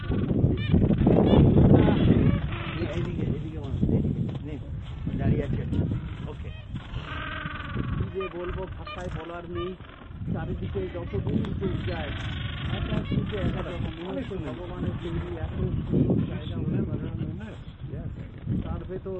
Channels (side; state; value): both; identical; correlation 1.00